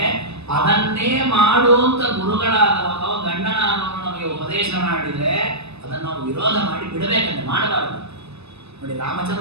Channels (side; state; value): left; late; 0.80 ms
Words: ಅದನ್ನೇ ಮಾಡುವಂತ ಗುರುಗಳಾದವರು ಗಂಡನಾದವರು ನಮಗೆ ಉಪದೇಶ ಮಾಡಿದರೆ ಅದನ್ನು ನಾವು ವಿರೋಧ ಮಾಡಿ ಬಿಡಬೇಕಂತ, ಮಾಡಬಾರದು. ನೋಡಿ